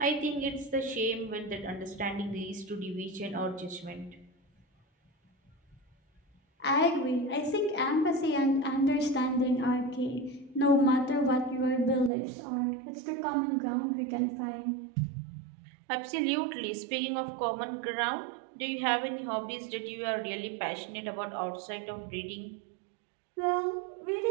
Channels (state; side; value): drops out; left; at 12.1 s